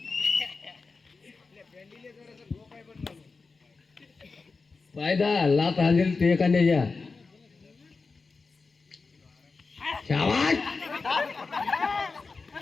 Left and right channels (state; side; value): quieter; right; 4.3 dB